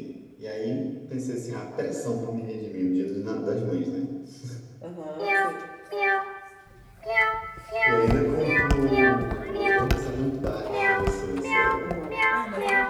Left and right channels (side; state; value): both; identical; correlation 1.00